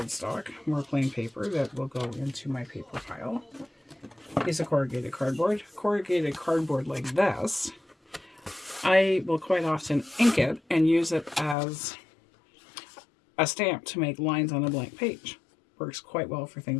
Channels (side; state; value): right; drops out; at 11.6 s